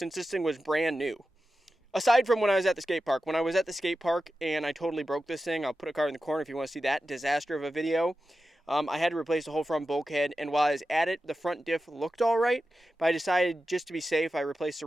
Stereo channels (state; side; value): normal; both; correlation 0.92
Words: this thing was brand new. Aside from when I was at the skate park. When I was at the skate park and I totally broke this thing, I'll put a card in the corner if you want to see that disaster of a video. I had to replace the whole front bulkhead, and while I was at it, the front diff looked all right, but I decided just to be safe, I replaced the